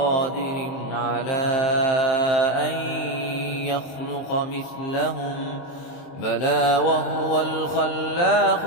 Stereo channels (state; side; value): late; right; 23 ms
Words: على أن يخلق مثلهم بلى وهو الخلاق